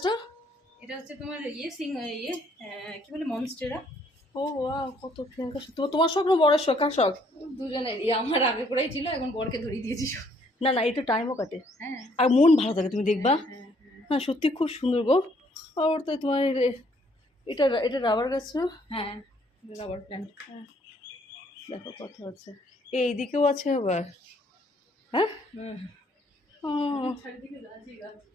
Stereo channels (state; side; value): normal; both; correlation 0.65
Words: এটা হচ্ছে তোমার কি বলে মনস্টেরা। ও ওয়াও, কত প্রিয়াঙ্কা, তোমার স্বপ্ন বড়ের শখ, কার শখ? দুজনের আমার আগে করেই ছিল, এখন বরকে ধরিয়ে দিয়েছি সব। না না একটু টাইমও কাটে, হ্যাঁ আর মন ভালো থাকে, তুমি দেখবা। হ্যাঁ সত্যি খুব সুন্দর গো। আর তো তোমার এটা রাবার গাছ না? হ্যাঁ রাবার প্ল্যান্ট। দেখো কত আছে, এইদিকেও আছে আবার। হ্যাঁ ও,